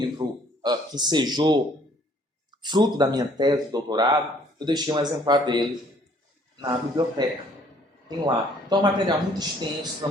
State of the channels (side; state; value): both; normal; correlation 0.60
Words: que sejou fruto da minha tese de doutorado, eu deixei um exemplar dele na biblioteca. Tem lá. Então é um material muito extenso,